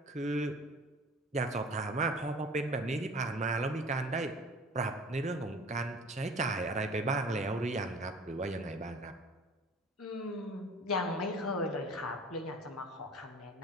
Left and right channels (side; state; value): both; normal; correlation 0.45